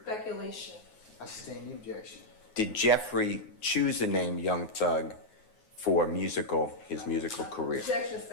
Speculation. I sustain the objection. Did Jeffrey choose the name Young Thug for his musical career? Objection,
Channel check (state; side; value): late; right; 9.4 ms